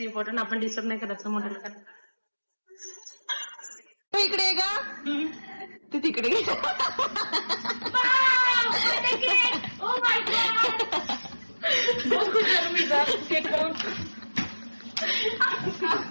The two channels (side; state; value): both; inverted; correlation -1.00